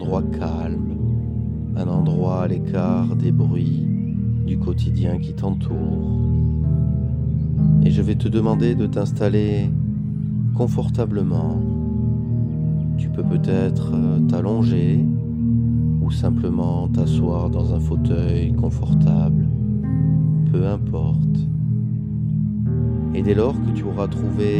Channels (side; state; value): both; identical; correlation 1.00